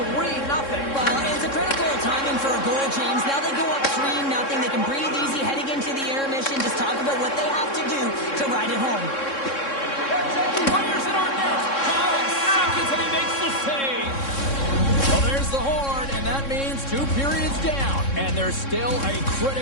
Well, it's a critical timing for a goal, James. Now they go up 3-0. They can breathe easy heading into the intermission. Just talk about what they have to do to ride it home. Fires it on net. 5 seconds and he makes the save. Well, there's the horn, and that means 2 periods down. And there's still a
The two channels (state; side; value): late; right; 3.6 ms